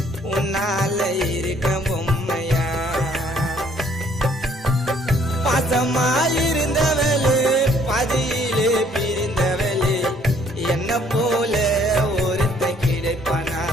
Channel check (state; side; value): normal; both; correlation 0.62